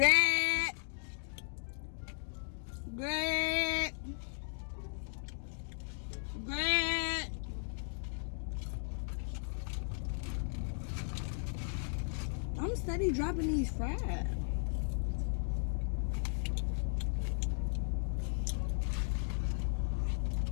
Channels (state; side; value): silent; right; digital silence